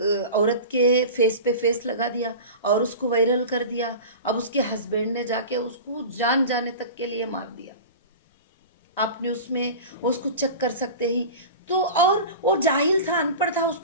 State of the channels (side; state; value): both; inverted; correlation -0.33